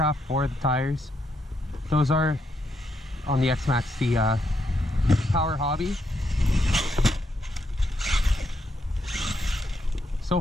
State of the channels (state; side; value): normal; both; correlation 0.79